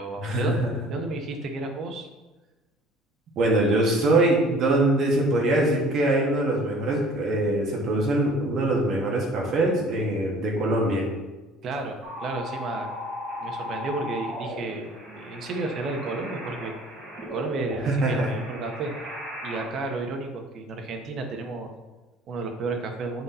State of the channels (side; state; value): both; normal; correlation 0.51